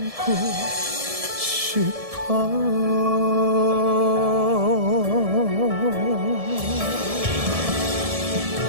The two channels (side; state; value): left; late; 1.7 ms